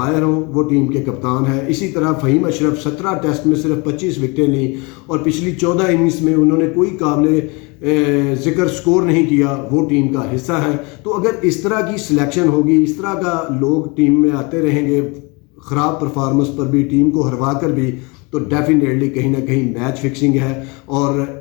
ہوں، وہ ٹیم کے کپتان ہیں. اسی طرح فہیم اشرف 17 ٹیسٹ میں صرف 25 وکٹیں لیں، اور پچھلی 14 اننگز میں انہوں نے کوئی قابل ذکر سکور نہیں کیا، وہ ٹیم کا حصہ ہے. تو اگر اس طرح کی سلیکشن ہوگی، اس طرح کا لوگ ٹیم میں آتے رہیں گے خراب پرفارمنس پر بھی، ٹیم کو ہروا کر بھی، تو ڈیفینیٹلی کہیں نہ کہیں میچ فکسنگ ہے. اور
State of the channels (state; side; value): quieter; right; 28.6 dB